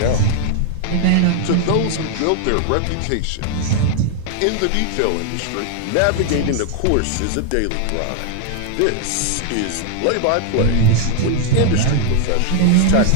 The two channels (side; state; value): both; different; correlation 0.00